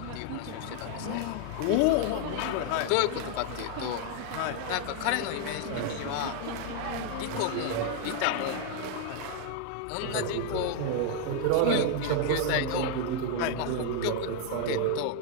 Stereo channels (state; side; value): different; both; correlation 0.00